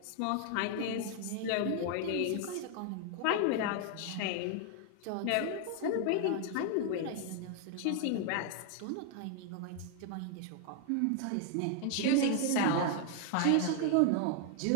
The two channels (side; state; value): both; different; correlation 0.00